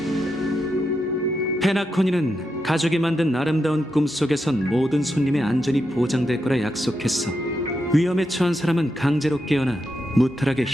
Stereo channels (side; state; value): both; normal; correlation 0.85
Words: 페나코니는 가족이 만든 아름다운 꿈속에선 모든 손님의 안전이 보장될 거라 약속했어. 위험에 처한 사람은 강제로 깨어나 무탈하게